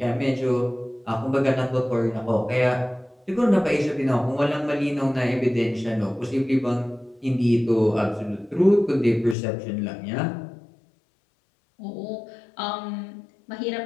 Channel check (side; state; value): right; drops out; at 9.3 s